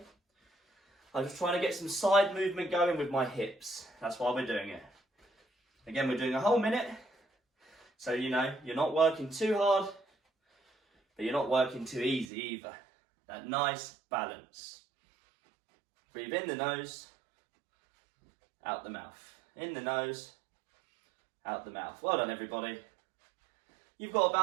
I'm just trying to get some side movement going with my hips. That's why we're doing it. Again, we're doing a whole minute. So, you know, you're not working too hard, but you're not working too easy either. That nice balance. Breathe in the nose, out the mouth. In the nose, out the mouth. Well done, everybody. You've got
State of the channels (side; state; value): left; drops out; at 12.2 s